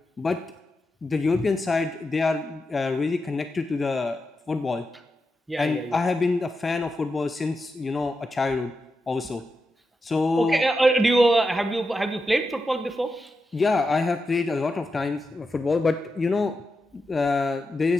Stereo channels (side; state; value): both; normal; correlation 0.88